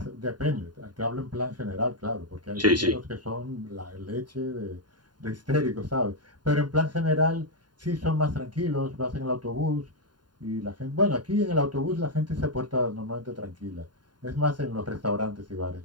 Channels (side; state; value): left; late; 0.70 ms